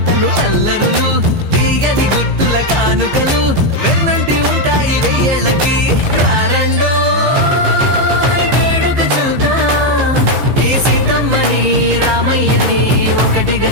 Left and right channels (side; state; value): left; late; 15 ms